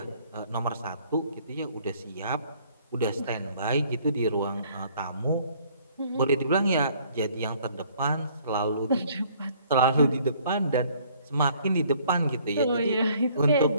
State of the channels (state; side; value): inverted; both; correlation -0.60